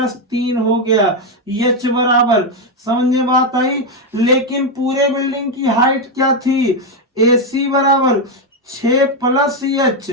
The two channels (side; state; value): both; normal; correlation 0.04